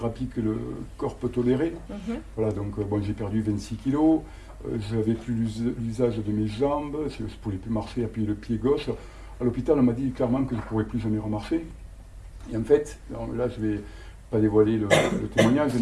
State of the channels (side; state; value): both; identical; correlation 1.00